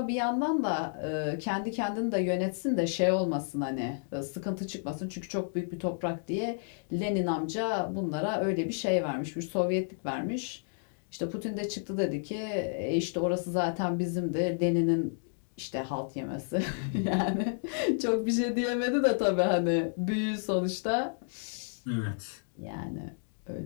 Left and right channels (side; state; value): right; silent; digital silence